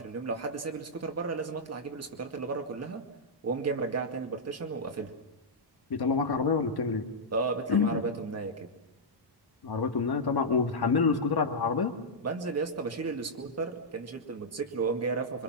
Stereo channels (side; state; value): both; normal; correlation -0.07